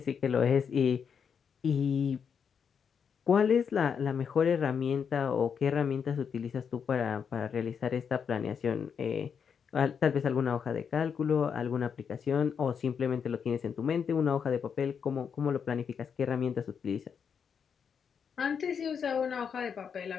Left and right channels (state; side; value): quieter; right; 6.9 dB